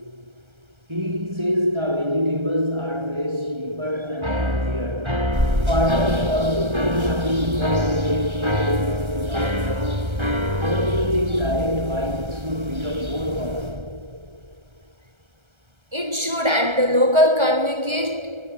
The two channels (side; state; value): left; late; 1.3 ms